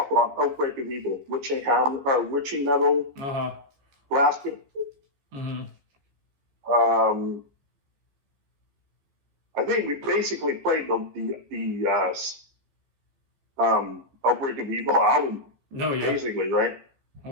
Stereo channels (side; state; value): left; late; 14 ms